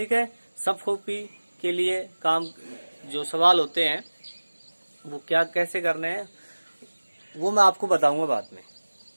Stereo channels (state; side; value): inverted; both; correlation -1.00